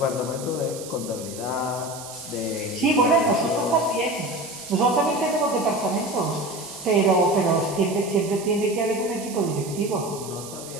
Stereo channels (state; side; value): noise; right; hiss, 13 dB below the sound